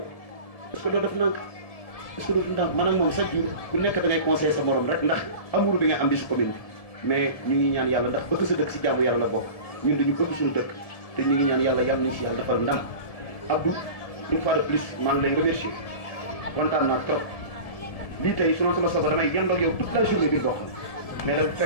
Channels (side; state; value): right; late; 1.7 ms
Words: est-ce que doo def nànk est-ce que doo def ndànk maanaam moom chaque jour ku nekk da ngay conseiller sa morom rek ndax amour bi nga am bi si commune bi mais ñu ngi ñaan yàlla ndax bëgg sa dëkk si jaamu yàlla la bokk ñun dañu bëgg suñu dëkk te ñu ngi ñaan yàlla yàlla nañu si yàlla defal ndam Abdou une fois de plus maa ngi lay remercier kontaan naa trop lii tey su doon sama sago damay yendoo ak yow toute la journée bi bokk mais dafa